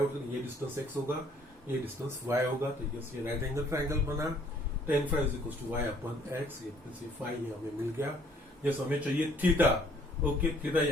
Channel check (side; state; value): both; normal; correlation 0.61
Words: ये डिस्टेंस x होगा, ये डिस्टेंस y होगा, तो यस ये राइट एंगल ट्रायंगल बना। tan phi is equal to y upon x, ये फाई हमें मिल गया। यस हमें चाहिए थीटा। ओके थीटा